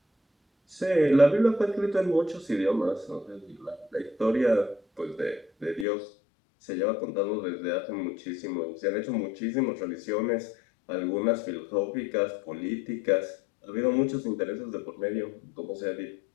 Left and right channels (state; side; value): drops out; right; at 5.9 s